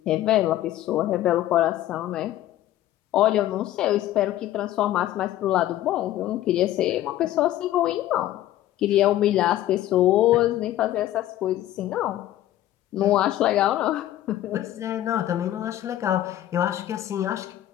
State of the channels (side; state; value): right; quieter; 13.6 dB